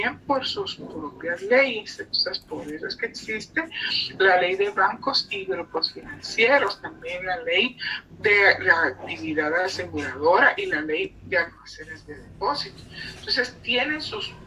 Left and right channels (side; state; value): both; identical; correlation 1.00